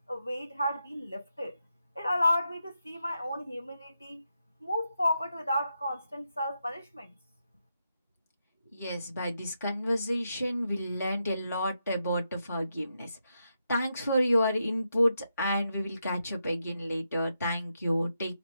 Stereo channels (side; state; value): both; inverted; correlation -0.85